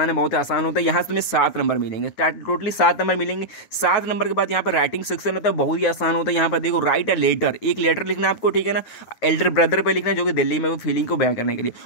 बहुत आसान होता है। यहाँ से तुम्हें 7 नंबर मिलेंगे, टोटली 7 नंबर मिलेंगे। 7 नंबर के बाद यहाँ पर राइटिंग सेक्शन होता है, बहुत ही आसान होता है। यहाँ पर देखो राइट अ लेटर, एक लेटर लिखना आपको, ठीक है ना, एल्डर ब्रदर पे लिखना जो कि दिल्ली में वो फीलिंग को बयां करने के लिए।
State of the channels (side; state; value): right; late; 9.3 ms